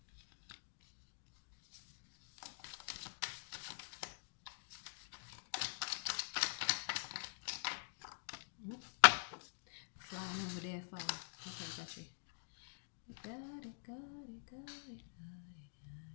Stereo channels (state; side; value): silent; right; digital silence